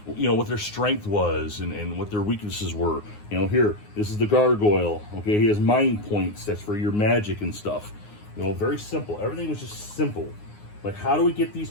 what their strength was and what their weaknesses were. Here, this is the gargoyle. Okay, he has mind points. That's for your magic and stuff. Very simple. Everything was just simple. Like, how do we get these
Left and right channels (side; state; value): right; late; 9.6 ms